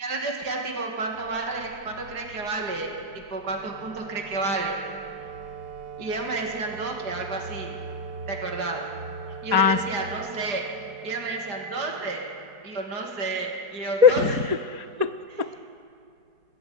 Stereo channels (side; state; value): left; late; 4.8 ms